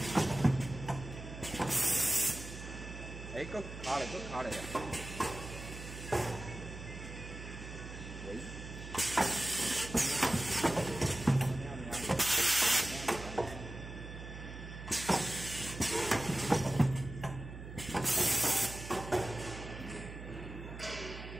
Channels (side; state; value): right; noise; hum, 11 dB below the sound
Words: 哎，搁卡嘞，搁卡嘞。喂。